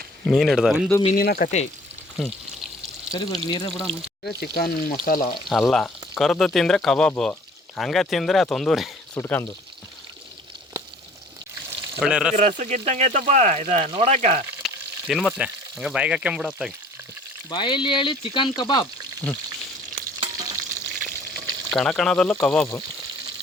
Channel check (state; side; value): normal; both; correlation 0.52